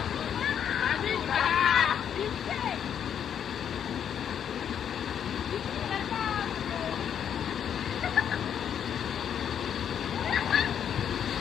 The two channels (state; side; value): quieter; right; 8.7 dB